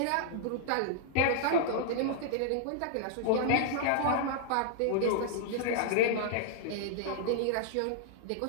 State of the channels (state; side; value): different; both; correlation -0.01